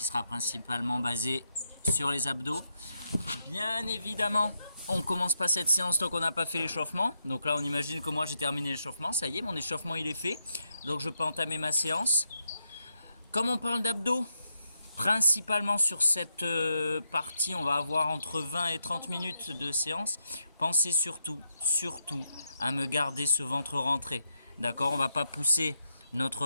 sera principalement basée sur les abdos. Bien évidemment, on ne commence pas cette séance tant qu'on n'a pas fait l'échauffement. Donc là, on imagine que moi j'ai terminé l'échauffement. Ça y est, mon échauffement il est fait. Donc je peux entamer ma séance. Comme on parle d'abdos, principalement sur cette partie, on va avoir entre 20 et 30 minutes de séance. Pensez surtout à me garder ce ventre rentré. D'accord, on ne va pas pousser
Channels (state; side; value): inverted; both; correlation -0.82